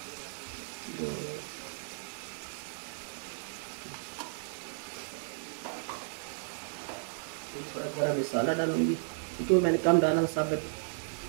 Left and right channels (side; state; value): left; silent; digital silence